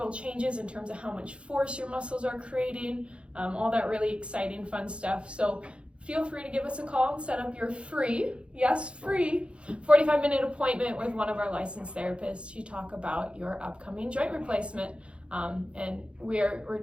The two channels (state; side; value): late; left; 0.058 ms